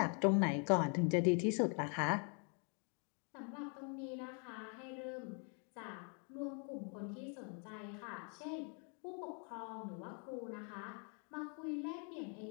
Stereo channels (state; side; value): quieter; right; 39.7 dB